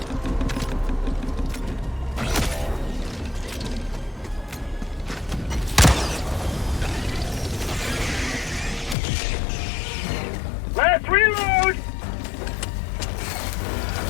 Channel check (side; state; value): right; drops out; at 9.0 s